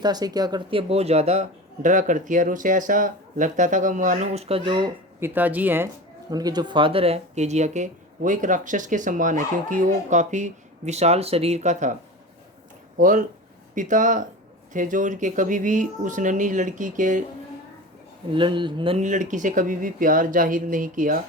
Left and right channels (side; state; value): both; normal; correlation 0.31